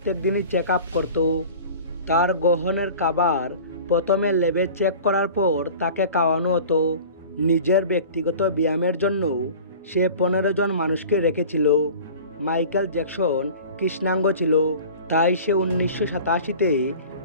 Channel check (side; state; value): both; inverted; correlation -0.40